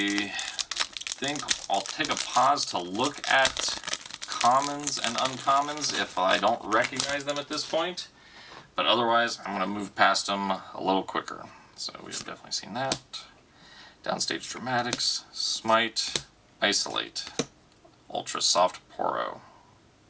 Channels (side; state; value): both; identical; correlation 1.00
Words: think I'll take a pause to look at commons and uncommons if I don't recognize them at this point. But otherwise, I'm going to move past them a little quicker. So we have definitely seen that. Downstage Dramatics, Smite, Isolate, Ultra Soft Poro.